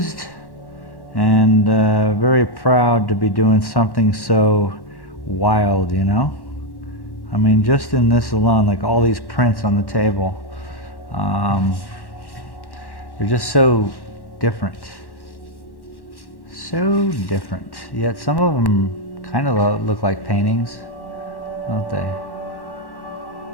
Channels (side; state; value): right; late; 1.1 ms